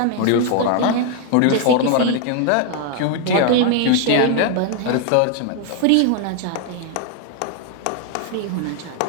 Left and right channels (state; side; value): different; both; correlation 0.00